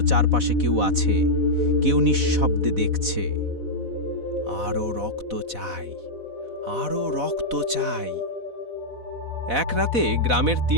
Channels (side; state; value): left; late; 4.1 ms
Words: চারপাশে কেউ আছে, কেউ নিঃশব্দে দেখছে। আরও রক্ত চাই, আরও রক্ত চাই। এক রাতে গ্রামের